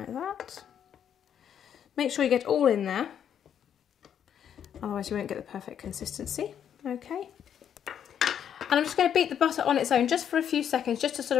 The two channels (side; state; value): right; quieter; 9.0 dB